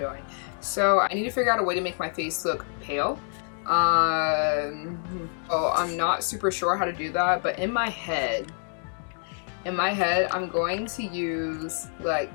So I need to figure out a way to make my face look pale. So I'm not super sure how to do that, but in my head, I'm going to use like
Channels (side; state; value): right; silent; 56 dB below the other